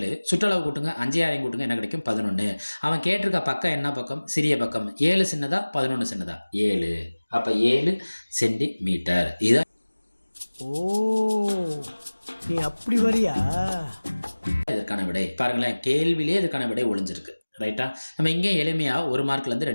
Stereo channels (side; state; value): both; inverted; correlation -1.00